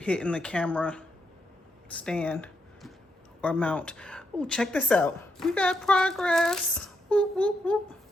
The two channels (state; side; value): normal; both; correlation 0.80